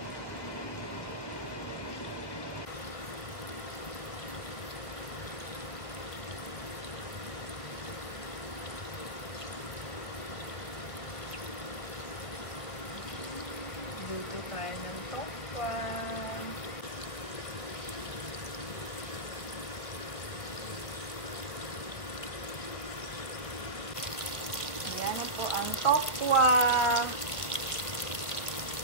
Luto tayo ng tokwa. Ayan po ang tokwa.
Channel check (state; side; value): late; right; 1.6 ms